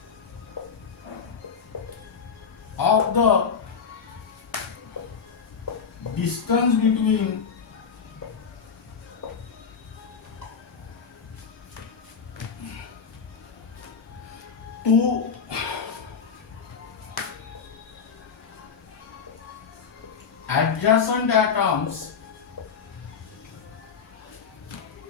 of the distance between two adjacent atoms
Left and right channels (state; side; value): quieter; right; 6.2 dB